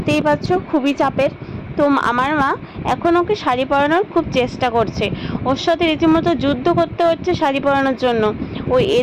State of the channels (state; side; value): identical; both; correlation 1.00